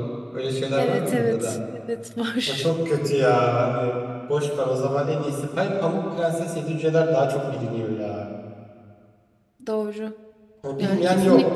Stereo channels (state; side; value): identical; both; correlation 1.00